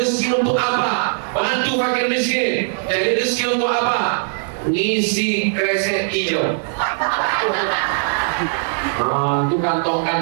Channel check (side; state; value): left; silent; digital silence